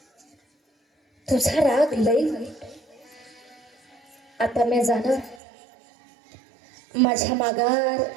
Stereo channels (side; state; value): left; drops out; at 5.4 s